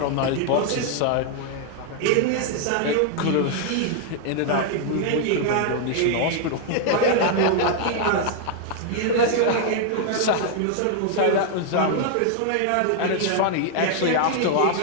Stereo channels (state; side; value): different; both; correlation 0.00